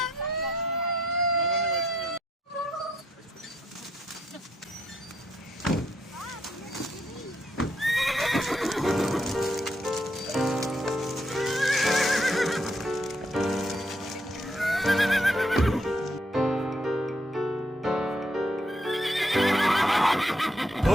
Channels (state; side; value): normal; both; correlation 0.74